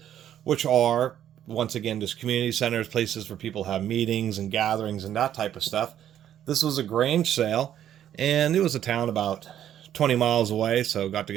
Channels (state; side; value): quieter; left; 10.7 dB